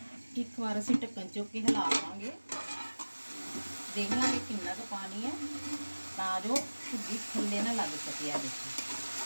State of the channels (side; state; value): both; inverted; correlation -1.00